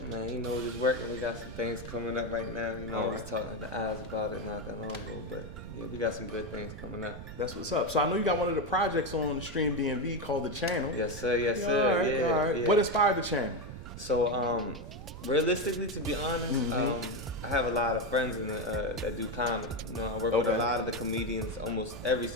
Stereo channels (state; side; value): noise; right; rumble, 11 dB below the sound